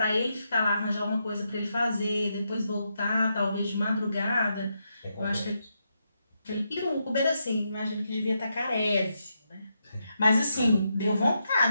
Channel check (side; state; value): both; inverted; correlation -0.83